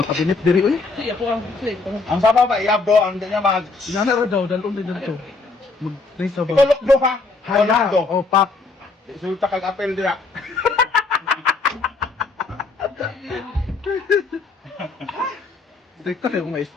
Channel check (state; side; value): quieter; right; 3.9 dB